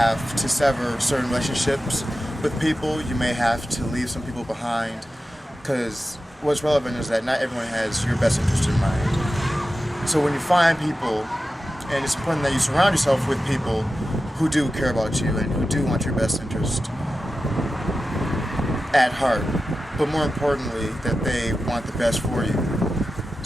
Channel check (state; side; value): normal; both; correlation 0.93